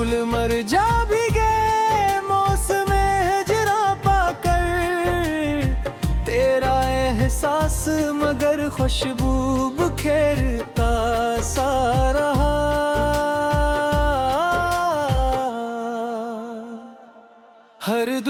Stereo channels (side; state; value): both; identical; correlation 1.00